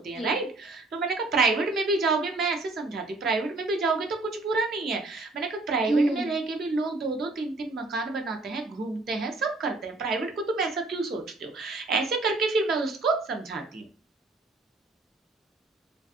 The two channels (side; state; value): left; quieter; 3.2 dB